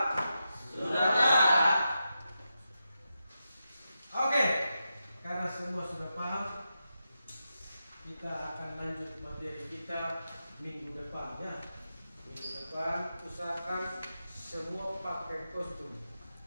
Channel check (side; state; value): both; inverted; correlation -0.89